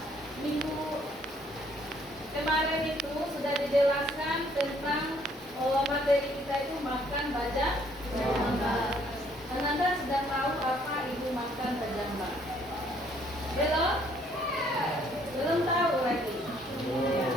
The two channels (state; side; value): normal; both; correlation 0.64